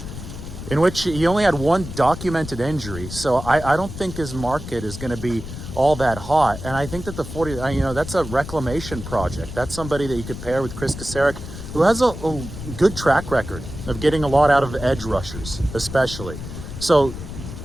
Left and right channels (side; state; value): left; noise; rumble, 10 dB below the sound